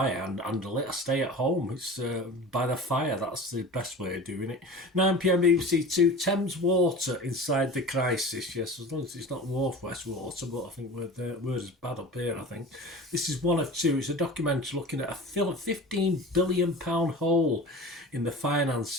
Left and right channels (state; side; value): normal; both; correlation 0.36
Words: handle it. I stay at home. It's by the fire. That's the best way of doing it. 9 p.m. BBC Two. Thames Water inside the crisis. Yes, as long as it's not Northwest Water, but I think we're as bad up here, I think. This is one of two. It's a documentary looking at a £15 billion hole in the